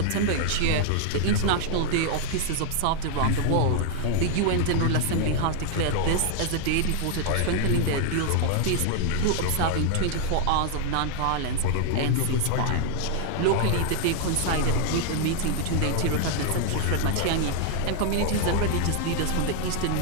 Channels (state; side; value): different; both; correlation 0.00